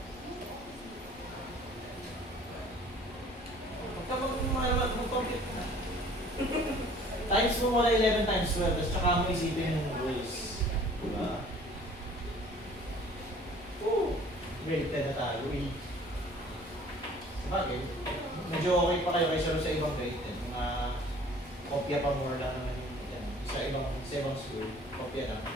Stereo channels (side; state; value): both; normal; correlation 0.52